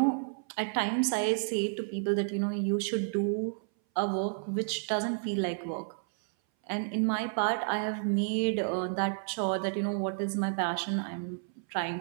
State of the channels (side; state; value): left; silent; 57 dB below the other